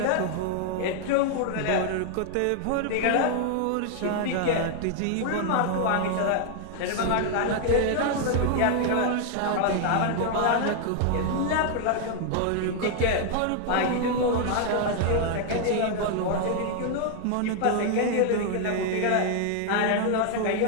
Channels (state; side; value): different; both; correlation 0.00